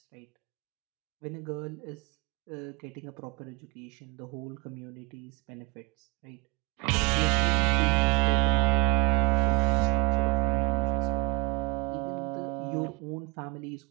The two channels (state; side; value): quieter; left; 28.7 dB